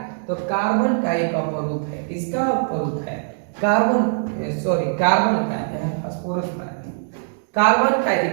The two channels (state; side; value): silent; left; digital silence